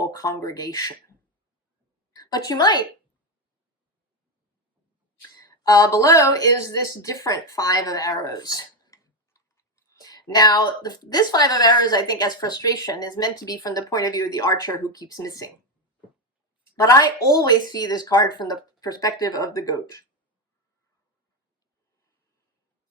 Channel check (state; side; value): normal; both; correlation 0.11